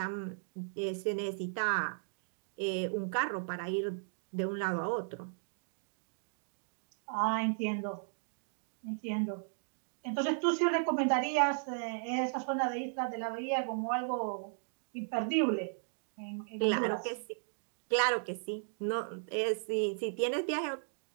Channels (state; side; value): silent; left; digital silence